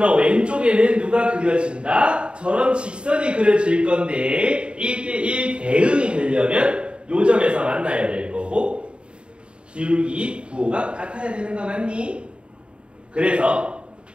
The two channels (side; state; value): left; late; 0.054 ms